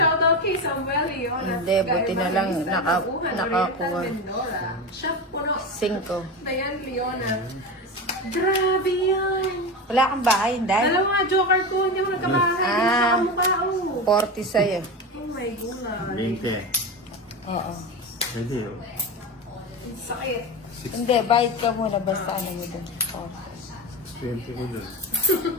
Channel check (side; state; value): both; normal; correlation 0.22